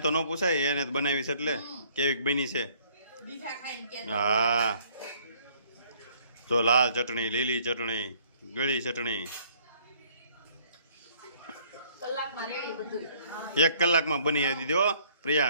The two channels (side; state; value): both; inverted; correlation -0.61